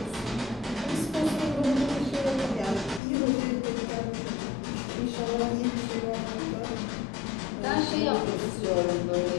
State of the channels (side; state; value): right; drops out; at 3.0 s